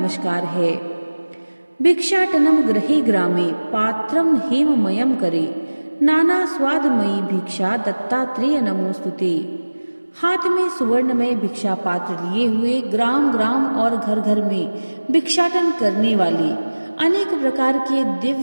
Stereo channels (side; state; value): both; inverted; correlation -1.00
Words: है। भिक्षाटनम गृहे ग्रामे पात्रम हेममयम करे नाना स्वादमयी भिक्षा दत्तात्रेय नमोस्तुते। हाथ में सुवर्णमय भिक्षा पात्र लिए हुए, ग्राम ग्राम और घर घर में भिक्षाटन करने वाले, अनेक प्रकार के